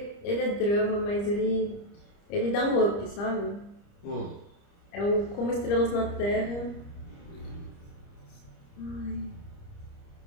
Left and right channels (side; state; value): right; late; 30 ms